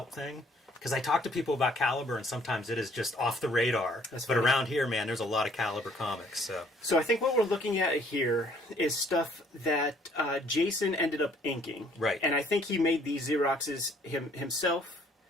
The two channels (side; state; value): both; normal; correlation 0.61